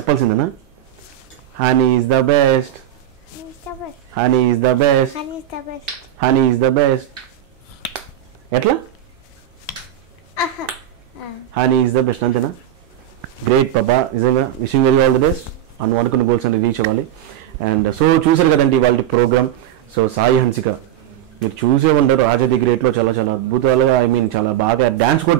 Honey is the best, honey is the best, honey is the best. ఎట్లా? హనీ ఈజ్ ద బెస్ట్, అంతేనా? గ్రేట్ పాపా, నిజంగా wishing very all the best. అనుకున్న గోల్స్ అన్ని రీచ్ అవ్వాలి. అండ్ సో చూసారు కదండి వాళ్ళ ప్రోగ్రామ్. సో సాయి హన్సిక మీరు చూసే ఉంటారు, రాజా ది గ్రేట్లో చాలా అద్భుతాలుగా, చాలా బాగా డ్యాన్స్ కూడా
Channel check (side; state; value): left; quieter; 11.6 dB